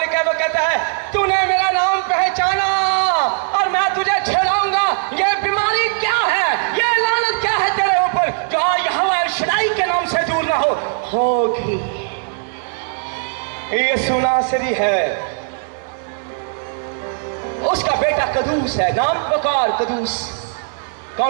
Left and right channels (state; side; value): silent; left; digital silence